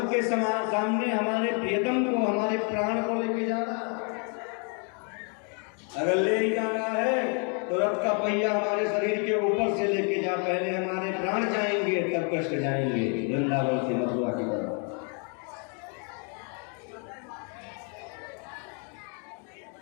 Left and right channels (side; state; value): right; quieter; 38.9 dB